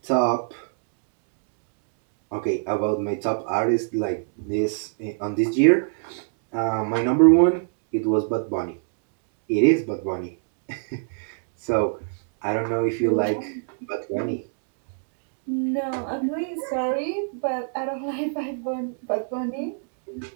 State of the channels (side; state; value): left; silent; digital silence